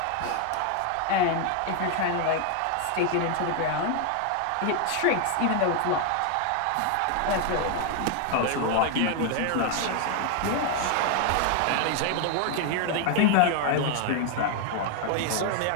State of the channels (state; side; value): different; both; correlation 0.00